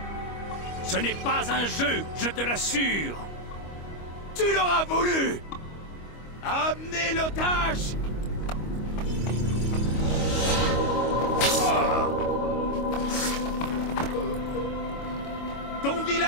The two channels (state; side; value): late; right; 25 ms